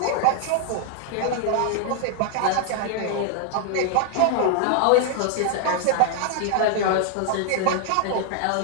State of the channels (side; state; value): both; different; correlation 0.00